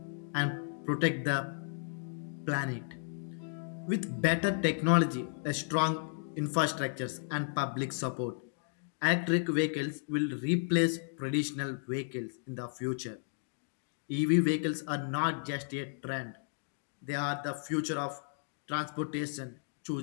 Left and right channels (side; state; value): right; silent; digital silence